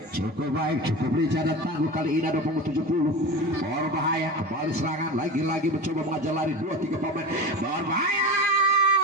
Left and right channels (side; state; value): both; normal; correlation 0.28